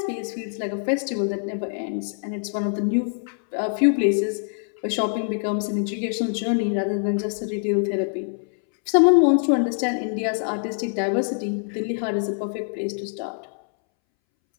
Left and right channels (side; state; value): right; silent; 62 dB below the other